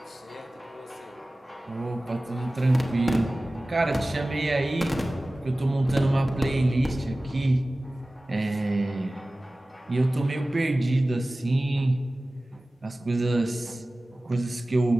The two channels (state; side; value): normal; both; correlation 0.97